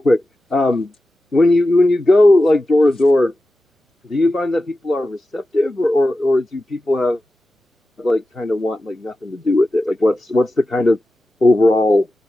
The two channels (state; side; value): normal; both; correlation 0.93